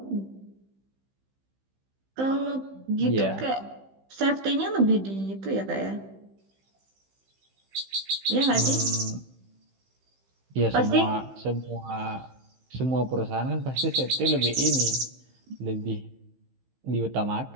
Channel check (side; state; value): left; late; 15 ms